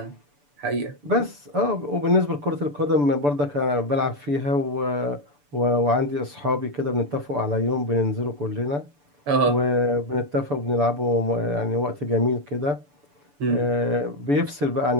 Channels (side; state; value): left; late; 6.9 ms